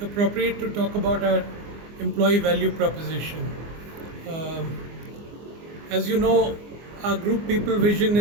appropriate to talk about our employee value proposition. Um, as you know, our group people vision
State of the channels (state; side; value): late; left; 24 ms